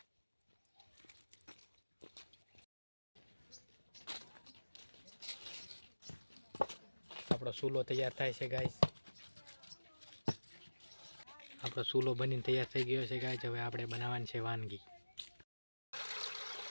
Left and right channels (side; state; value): both; inverted; correlation -1.00